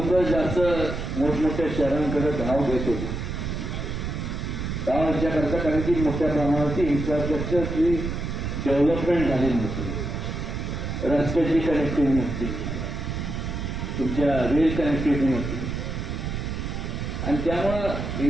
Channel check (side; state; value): right; noise; rumble, 4 dB below the sound